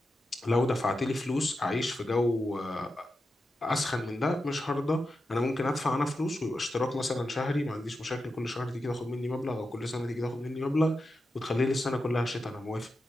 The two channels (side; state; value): both; normal; correlation 0.89